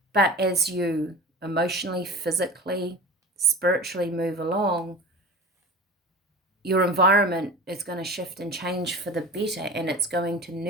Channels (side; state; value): both; normal; correlation 0.34